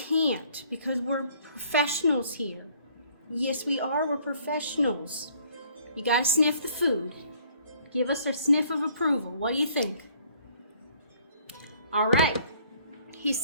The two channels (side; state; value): both; inverted; correlation -0.60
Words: because we're professionals here. Yes, we are. We're professionals. You gotta sniff the food. Give us a sniff of approval. What do you think? All right. He